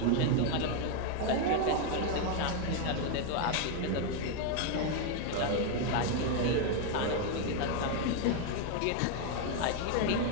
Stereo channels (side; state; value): both; different; correlation 0.01